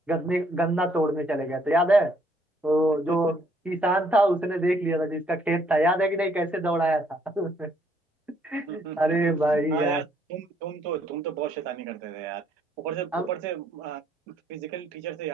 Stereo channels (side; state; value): both; normal; correlation 0.68